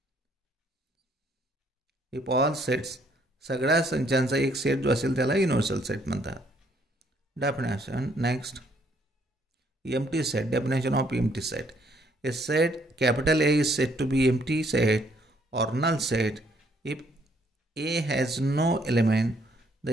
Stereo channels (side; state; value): both; normal; correlation 0.67